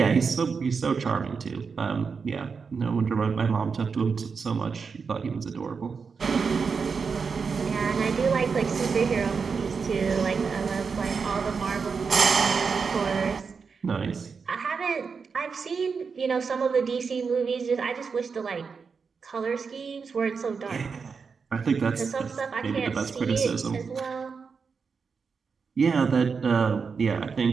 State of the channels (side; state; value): left; quieter; 5.4 dB